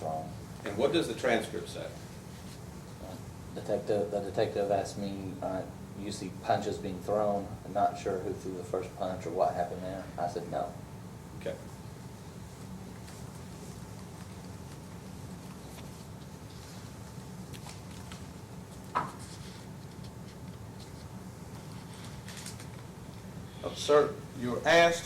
And what does the transcript say? The detective asked me, you see punches being thrown. I'm not sure who threw the first punch or what happened there. I said no. Okay. Sir, you were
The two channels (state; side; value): identical; both; correlation 1.00